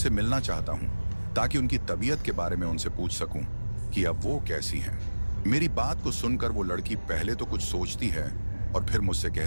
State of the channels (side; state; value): both; inverted; correlation -1.00